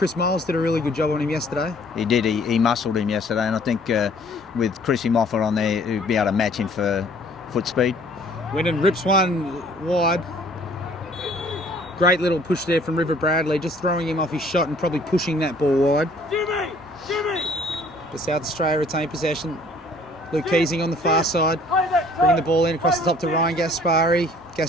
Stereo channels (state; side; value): normal; both; correlation 0.56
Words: Miles did a really good job on him yesterday. He did. He muscled him yesterday, and I think with Chrissy Moffat on there, he'd be able to match him for foot speed. Winnan rips one wide. Great little push there from River Bradley, just throwing him off his shot and probably pushing that ball wide. The South Australia retain possession. Luke Keesing on the far side, bringing the ball in across the top to Ryan Gaspari.